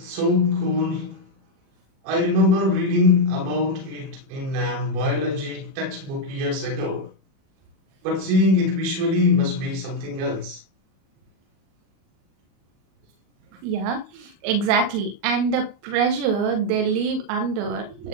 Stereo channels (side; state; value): left; late; 37 ms